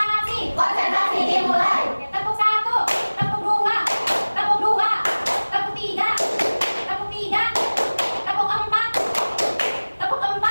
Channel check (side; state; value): both; inverted; correlation -1.00